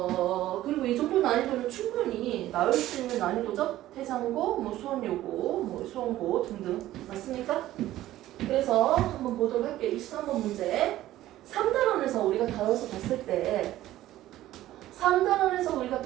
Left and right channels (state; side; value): quieter; left; 14.6 dB